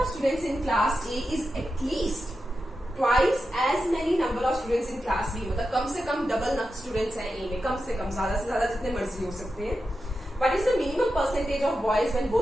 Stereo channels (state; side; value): normal; both; correlation 0.90